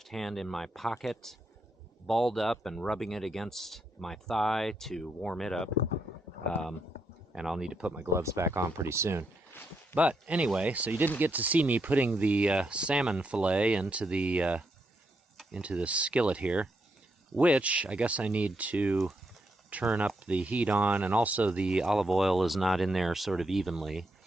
hand in my pocket, balled up and rubbing it against my thigh to warm it up, and I'll need to put my gloves back on pretty soon. But anyway, so you didn't get to see me putting the salmon fillet into the skillet here, which I guess I need to turn up the heat on, and also the olive oil is not in there sort of evenly.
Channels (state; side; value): normal; both; correlation 0.80